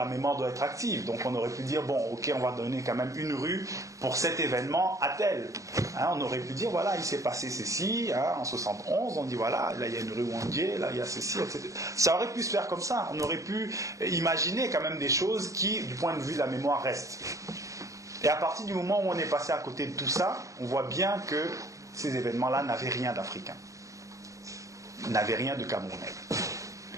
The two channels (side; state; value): left; late; 0.16 ms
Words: mémoire doit être active. Donc on aurait pu dire, bon, ok, on va donner quand même une rue pour cet événement à tel. On aurait pu dire, voilà, il s'est passé ceci, en 71, on dit, voilà, là il y a une rue Wandier, là il y a ceci, etc. Ça aurait pu se faire comme ça. On aurait pu imaginer quand même des choses qui, du point de vue de la mémoire, restent. Et à partir du moment où on est passé à côté de tout ça, on voit bien que ces événements-là n'avaient rien d'africain, n'avaient rien de camerounais.